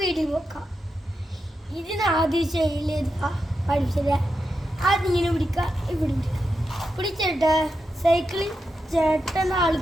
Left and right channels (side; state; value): both; normal; correlation 0.88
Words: പോക്കാം. ഇതിന് ആദ്യം ചെയ്യലേതാ പഠിച്ചത്. അതിങ്ങനെ പിടിക്കുക, ഇവിടെ പിടിച്ചിട്ട് സൈക്കിളിൽ ചേട്ടൻ